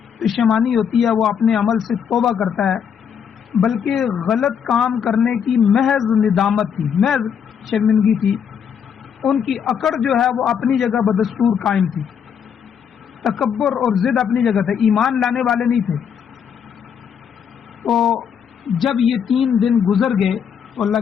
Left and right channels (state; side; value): quieter; right; 7.7 dB